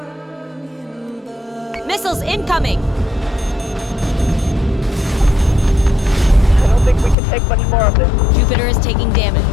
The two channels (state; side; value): drops out; right; at 7.2 s